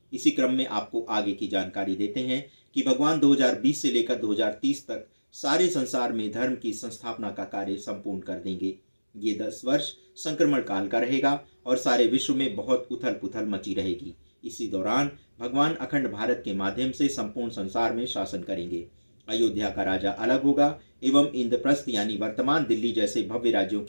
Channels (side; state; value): both; inverted; correlation -1.00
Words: इसी क्रम में आपको आगे की जानकारी देते हैं कि भगवान 2020 से लेकर 2030 तक सारे संसार में धर्म की संस्थापना का कार्य संपूर्ण कर देंगे। ये 10 वर्ष संक्रमण काल का रहेगा और सारे विश्व में बहुत उथल पुथल मची रहेगी। इसी दौरान भगवान अखंड भारत के माध्यम से संपूर्ण संसार में शासन करेंगे। अयोध्या का राजा अलग होगा एवं इंद्रप्रस्थ यानी वर्तमान दिल्ली जैसे भव्य राज्यों